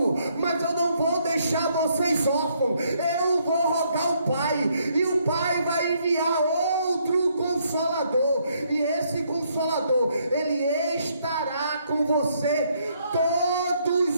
mas eu não vou deixar vocês órfãos. Eu vou rogar o Pai, e o Pai vai enviar outro Consolador, e esse Consolador, Ele estará com você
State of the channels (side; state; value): both; inverted; correlation -0.71